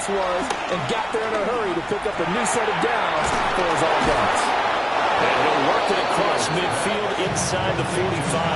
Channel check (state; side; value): identical; both; correlation 1.00